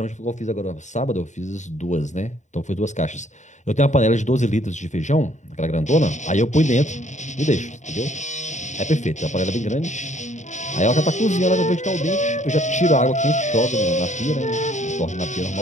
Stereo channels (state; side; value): late; right; 0.34 ms